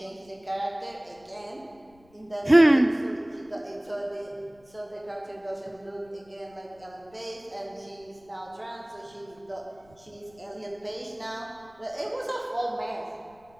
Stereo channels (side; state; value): left; noise; rumble, 29 dB below the sound